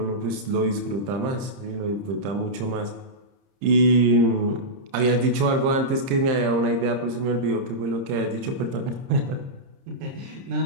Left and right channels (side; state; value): left; late; 31 ms